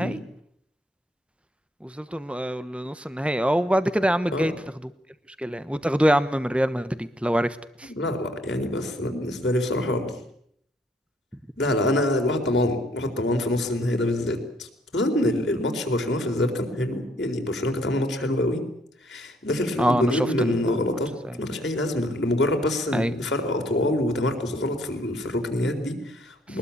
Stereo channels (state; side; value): normal; both; correlation 0.68